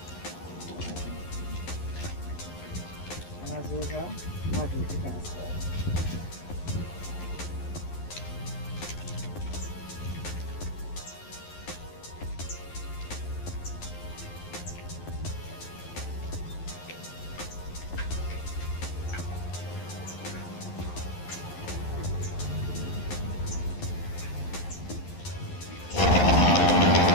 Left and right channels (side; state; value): right; late; 11 ms